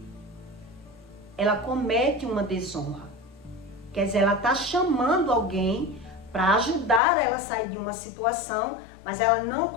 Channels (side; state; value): right; drops out; at 7.0 s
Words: Ela comete uma desonra. Quer dizer, ela está chamando alguém para ajudar ela a sair de uma situação, mas ela não